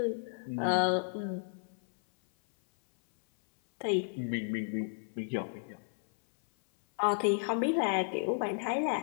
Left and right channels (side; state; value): right; silent; 56 dB below the other